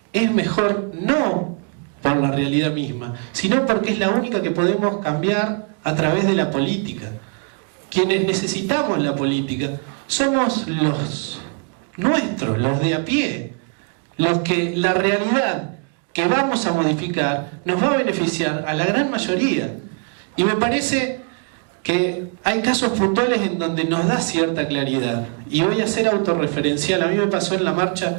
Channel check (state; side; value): quieter; left; 39.7 dB